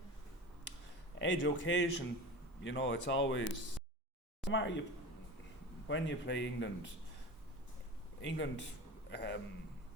Edge occasion, you know, it's always no matter when you play England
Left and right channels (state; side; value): normal; both; correlation 0.32